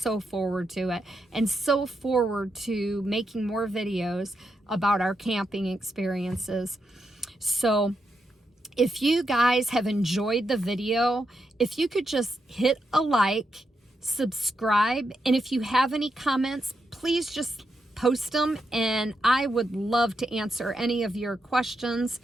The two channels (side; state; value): both; normal; correlation 0.84